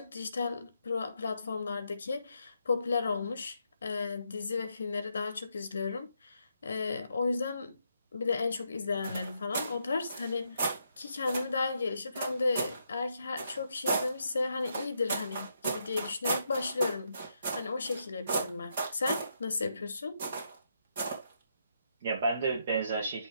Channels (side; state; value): both; inverted; correlation -0.79